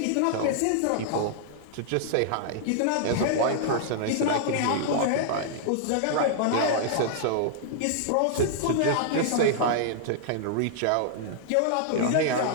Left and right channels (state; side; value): different; both; correlation -0.01